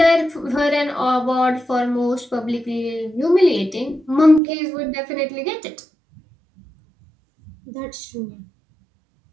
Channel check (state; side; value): drops out; left; at 4.4 s